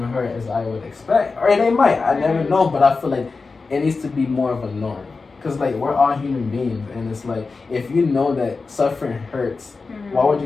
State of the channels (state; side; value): quieter; right; 4.2 dB